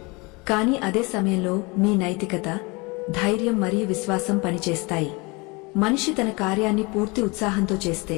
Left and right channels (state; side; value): quieter; right; 27.1 dB